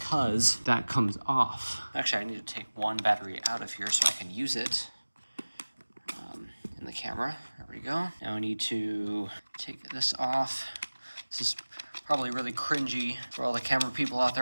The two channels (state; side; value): inverted; both; correlation -1.00